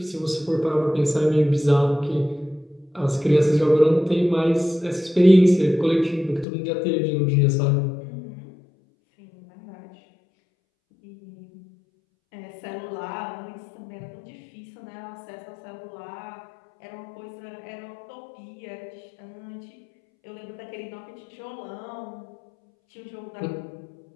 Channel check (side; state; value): right; drops out; at 6.5 s